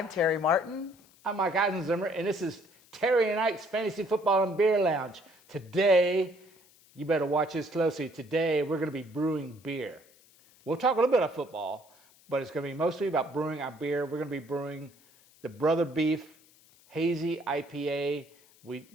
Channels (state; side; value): noise; left; hiss, 28 dB below the sound